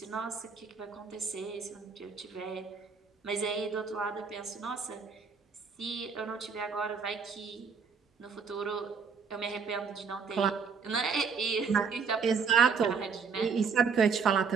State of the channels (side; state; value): left; quieter; 5.7 dB